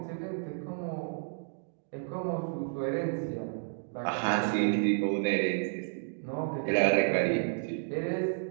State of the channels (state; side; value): silent; left; digital silence